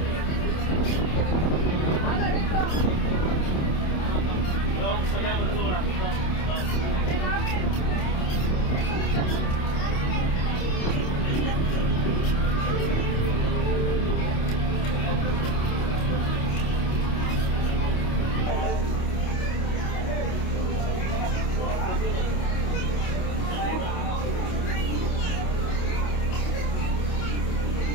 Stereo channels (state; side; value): late; right; 27 ms